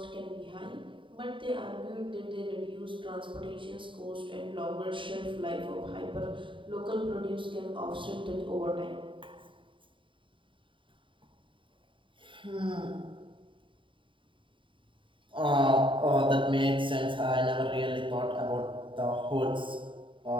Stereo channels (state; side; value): late; left; 0.25 ms